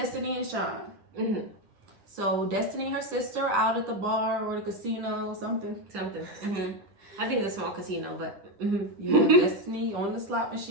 and Sean. So Destiny and her sister are out at the bar or the casino, something. I think it's a small casino, but Destiny on the slot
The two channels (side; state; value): left; late; 9.9 ms